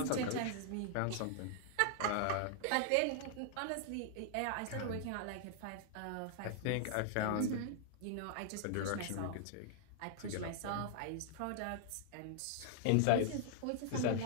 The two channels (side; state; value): both; different; correlation 0.00